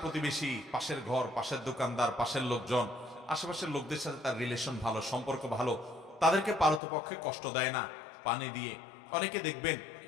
প্রতিবেশী, পাশের ঘর, পাশের দোকানদার, পাশের লোকজন, আশেপাশের লোকদের সাথে তার রিলেশন ভালো, সম্পর্ক ভালো, তাদেরকে পারতপক্ষে কষ্ট দেয় না, পানি দিয়ে। অনেকে দেখবেন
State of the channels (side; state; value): right; drops out; at 6.8 s